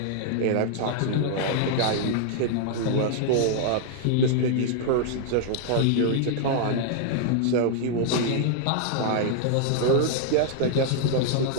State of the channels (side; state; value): both; different; correlation 0.00